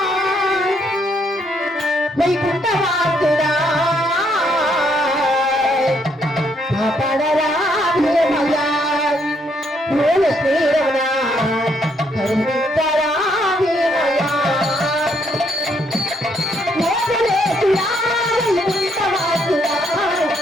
వైకుంఠవాసుడా కాపాడరా భీమయ్యా, మూల శ్రీరమణ కరుణించరా భీమయ్యా, మోసలేసుడా వైకుంఠవాసుడా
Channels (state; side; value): normal; both; correlation 0.72